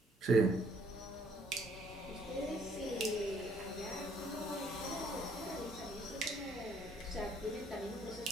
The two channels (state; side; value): normal; both; correlation 0.64